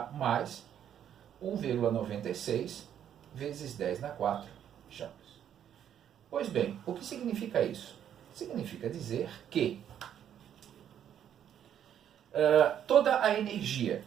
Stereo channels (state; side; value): quieter; left; 9.7 dB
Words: mais 1,96 vezes 10 na 4 joules. Pois bem, o que significa isso? Significa dizer que toda a energia